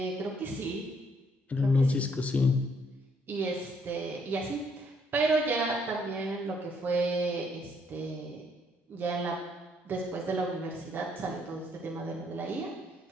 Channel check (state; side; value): normal; both; correlation 0.69